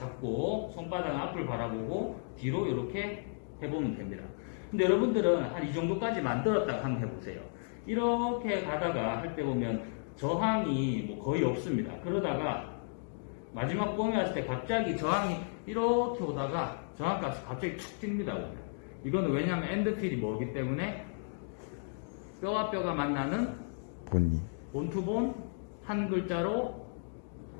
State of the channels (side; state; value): right; silent; digital silence